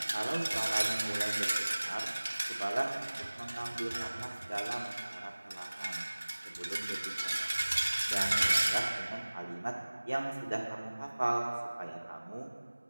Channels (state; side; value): inverted; both; correlation -1.00